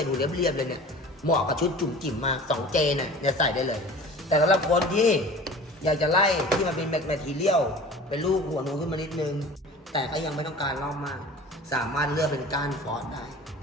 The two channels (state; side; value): normal; both; correlation 0.41